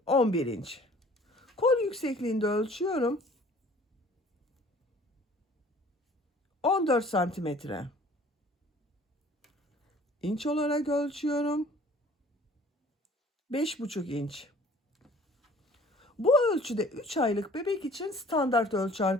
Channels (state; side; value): normal; both; correlation 0.51